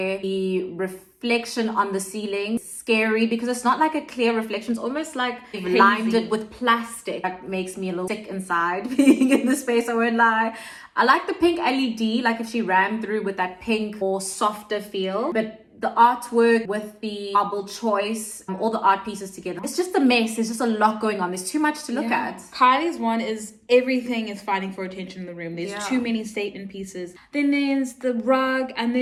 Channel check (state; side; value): identical; both; correlation 1.00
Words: The reflection on the ceiling, scary, because it's not like a clear reflection. It's almost like they've lined it with plastic. That makes me a little sick inside being in the space, I won't lie. I like the pink LED, like if she ran through with that pink or softer feel, but the artwork with the marble choice, all the art pieces together, it's just a mess. There's just a lot going on. There's too much to look at. Kylie's one is everything is fighting for attention in the room. There's too many statement pieces. Then there's the rug, and